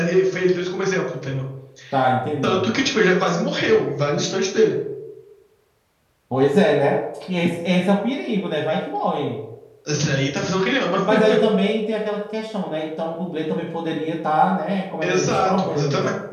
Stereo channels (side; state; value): both; identical; correlation 1.00